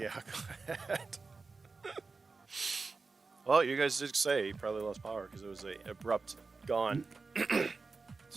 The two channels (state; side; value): quieter; left; 4.2 dB